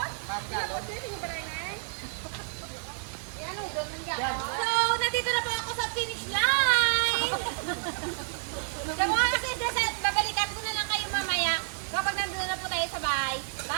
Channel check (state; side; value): silent; left; digital silence